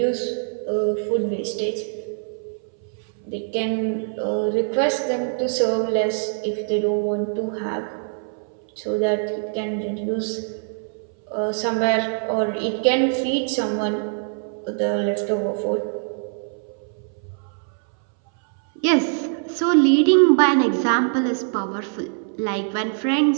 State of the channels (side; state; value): left; silent; 62 dB below the other